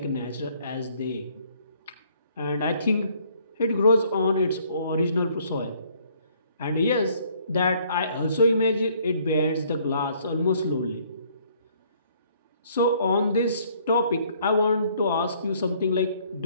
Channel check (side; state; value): both; inverted; correlation -0.63